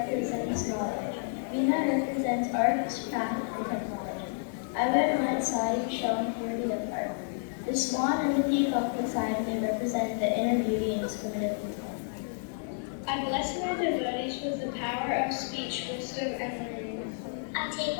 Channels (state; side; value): silent; right; digital silence